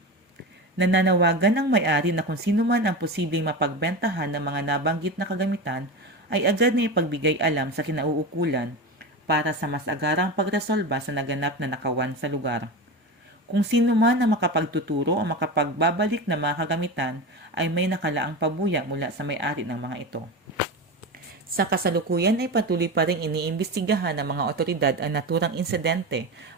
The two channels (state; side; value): normal; both; correlation 0.23